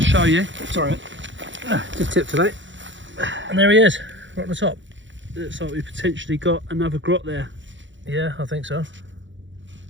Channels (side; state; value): left; late; 0.54 ms